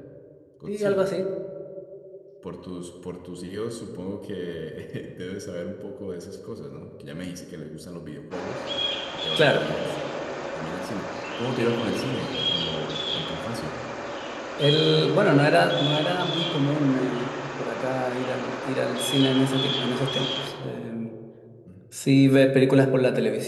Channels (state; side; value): identical; both; correlation 1.00